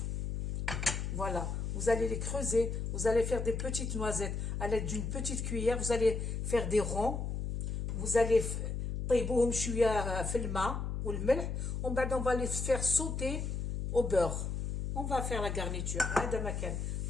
Voilà. Vous allez les creuser. Vous allez faire des petites noisettes à l'aide d'une petite cuillère. Vous allez faire des ronds. Vous allez طيبوهم شويه في الماء والملح. On va les faire sauter au beurre. On va faire la garniture. هذا مكان.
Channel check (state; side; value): noise; left; hum, 2 dB below the sound